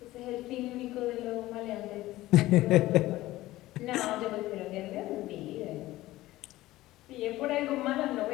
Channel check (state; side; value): quieter; right; 16.9 dB